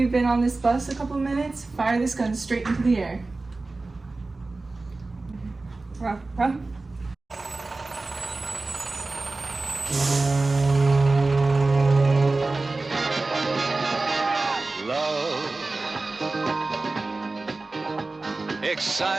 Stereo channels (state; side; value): quieter; left; 3.4 dB